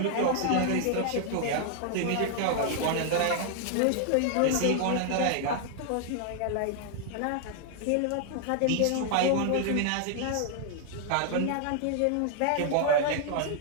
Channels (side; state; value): both; different; correlation 0.00